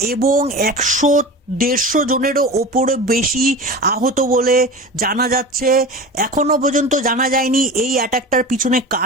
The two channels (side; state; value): both; normal; correlation 0.32